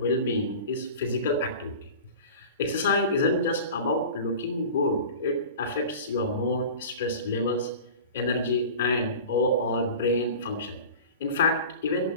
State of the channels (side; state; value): both; inverted; correlation -0.36